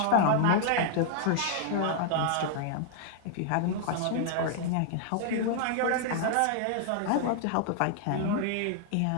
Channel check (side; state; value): both; different; correlation 0.00